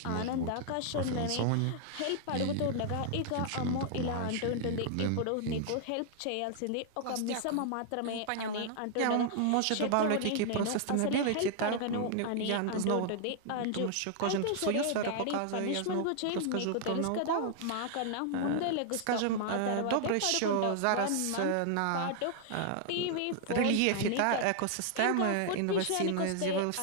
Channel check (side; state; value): both; different; correlation 0.00